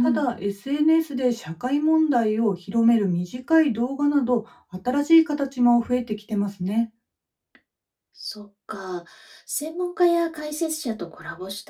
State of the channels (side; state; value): both; identical; correlation 1.00